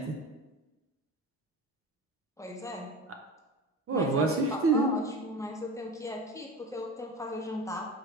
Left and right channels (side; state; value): both; normal; correlation 0.31